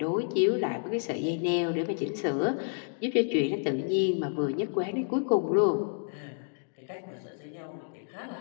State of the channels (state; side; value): silent; right; digital silence